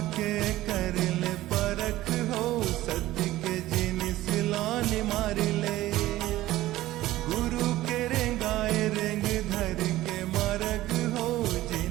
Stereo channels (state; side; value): quieter; left; 16.0 dB